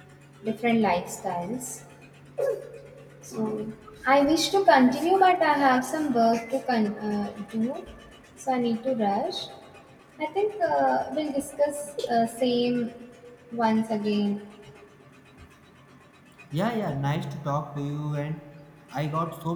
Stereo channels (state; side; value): identical; both; correlation 1.00